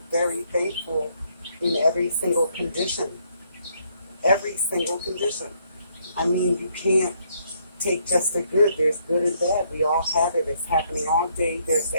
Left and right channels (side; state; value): both; inverted; correlation -0.70